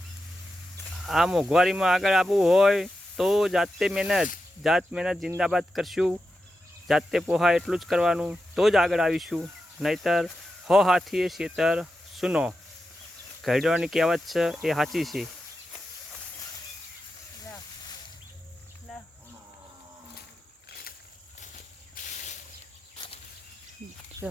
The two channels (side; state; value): both; normal; correlation 0.89